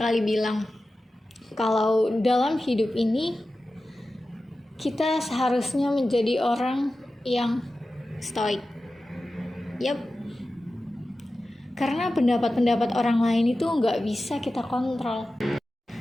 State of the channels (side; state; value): both; normal; correlation 0.94